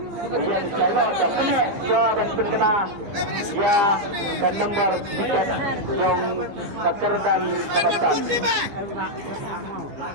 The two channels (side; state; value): left; late; 14 ms